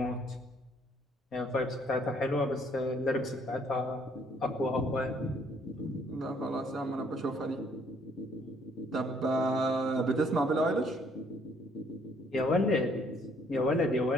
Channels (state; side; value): normal; both; correlation 0.65